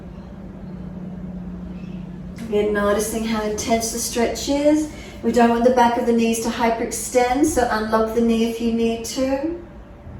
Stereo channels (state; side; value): identical; both; correlation 1.00